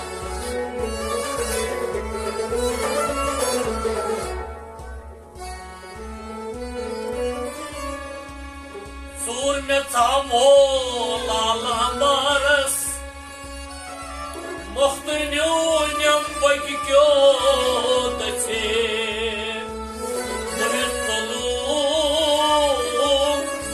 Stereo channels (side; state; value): both; identical; correlation 1.00